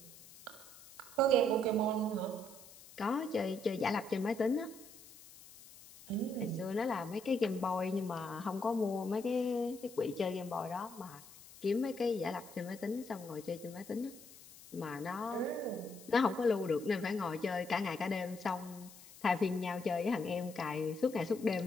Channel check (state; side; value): noise; left; hiss, 19 dB below the sound